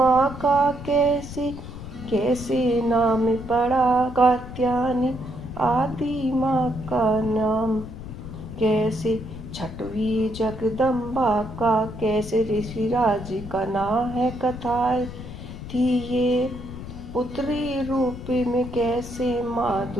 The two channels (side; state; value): left; noise; rumble, 11 dB below the sound